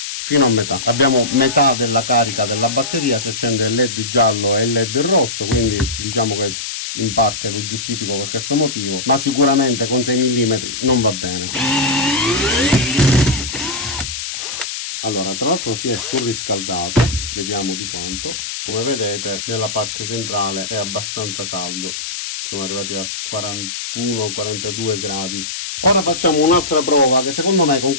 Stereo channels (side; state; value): left; noise; hiss, 6 dB below the sound